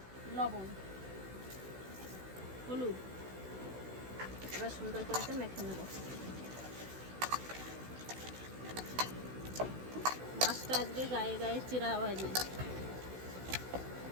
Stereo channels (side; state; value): left; late; 16 ms